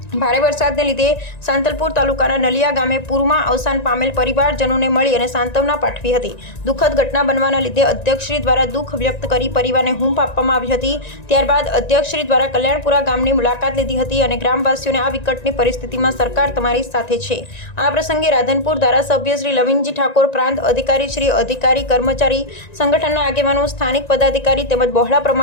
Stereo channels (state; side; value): late; right; 1.9 ms